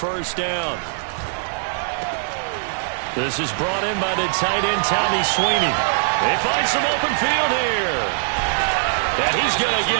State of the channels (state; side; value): silent; left; digital silence